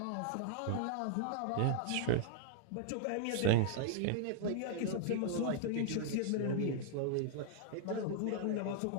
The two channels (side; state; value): both; different; correlation -0.01